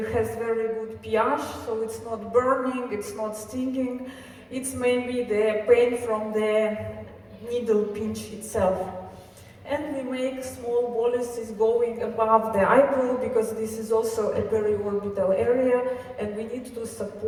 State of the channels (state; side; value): identical; both; correlation 1.00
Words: very good pH, so it's not burning, it's not stinging. It's maybe the pain from the needle pinch itself. And we make small boluses going above the eyebrow, because this is also a periorbital area, and we need to